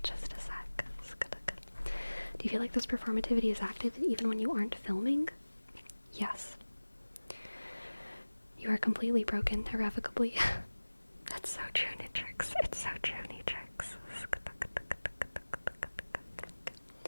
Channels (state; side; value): inverted; both; correlation -1.00